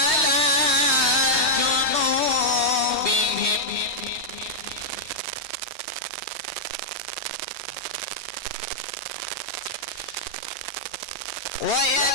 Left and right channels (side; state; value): left; late; 3.1 ms